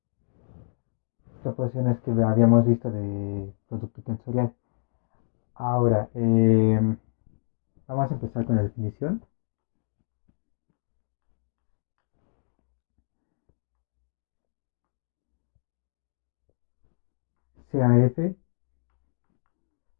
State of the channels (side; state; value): right; silent; digital silence